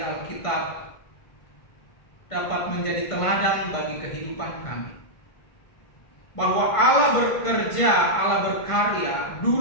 dapat menjadi teladan bagi kehidupan kami, bahwa Allah bekerja, Allah berkarya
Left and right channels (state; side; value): late; right; 1.5 ms